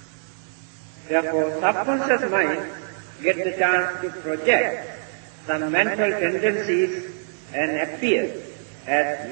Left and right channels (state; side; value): silent; left; digital silence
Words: Therefore, subconscious mind gets the chance to project some mental tendencies and appear as